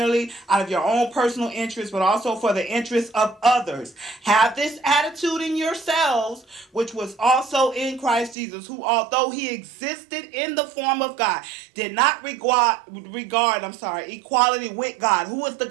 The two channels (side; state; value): left; drops out; at 8.3 s